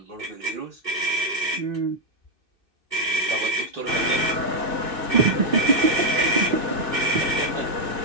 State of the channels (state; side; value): late; left; 2.6 ms